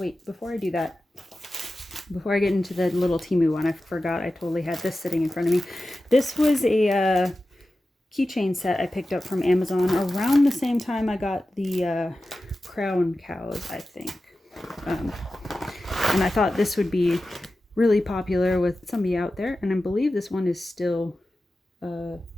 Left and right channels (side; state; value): both; normal; correlation 0.94